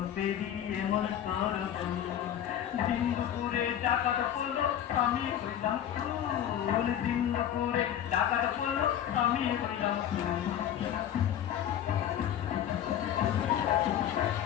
পেরিয়ে মন দিন দুপুরে ডাকাত পড়লো আমি হইলাম ফুল দিন দুপুরে ডাকাত পড়লো আমি হইলাম ফুল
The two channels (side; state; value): right; quieter; 10.4 dB